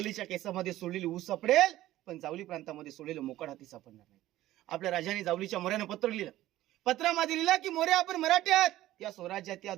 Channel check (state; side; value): quieter; left; 15.0 dB